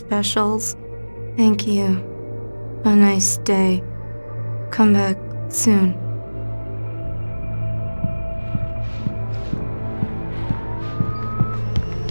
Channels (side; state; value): both; inverted; correlation -1.00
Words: Thank you. A nice day. Come back soon.